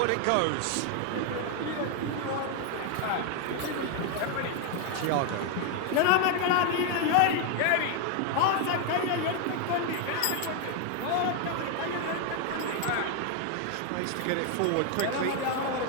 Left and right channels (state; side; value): different; both; correlation 0.01